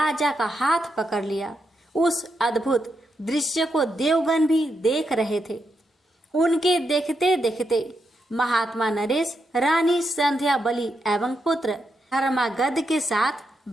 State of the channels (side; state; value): both; normal; correlation 0.83